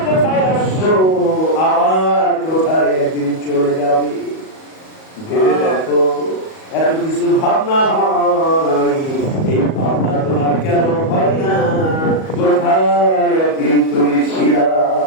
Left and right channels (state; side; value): late; right; 38 ms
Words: কোথায় আসছো আবার কোথায় একদিন চলে যাবে ভেবে দেখো এত কিছু ভাবনা হয় এই ভাবনা তোমার কেন হয় না কোথায় একদিন তুমি ছিলা